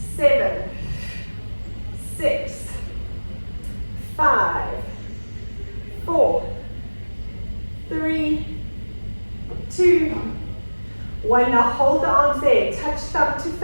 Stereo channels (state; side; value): inverted; both; correlation -1.00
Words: 7. 6. 5. 4. 3. 2. 1. Now hold the arms there. Touch thumb to